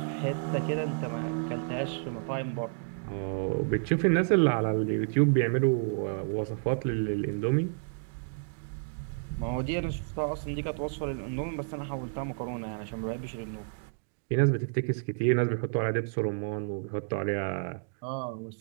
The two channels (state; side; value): silent; left; digital silence